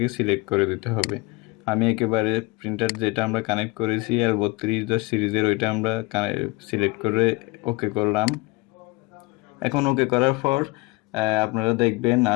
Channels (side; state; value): right; quieter; 24.4 dB